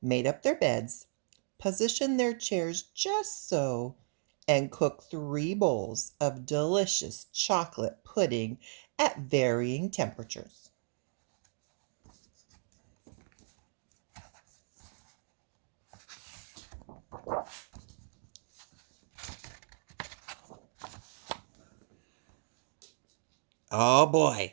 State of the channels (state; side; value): silent; left; digital silence